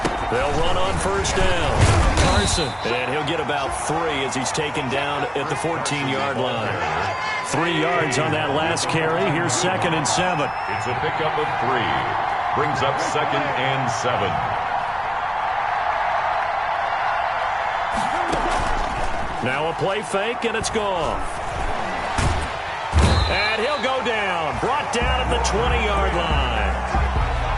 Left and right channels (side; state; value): both; identical; correlation 1.00